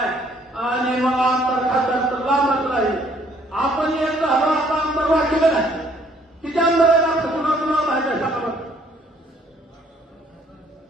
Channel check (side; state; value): both; normal; correlation 0.63